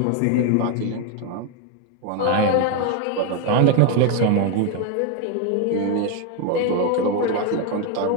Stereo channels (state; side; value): different; both; correlation 0.01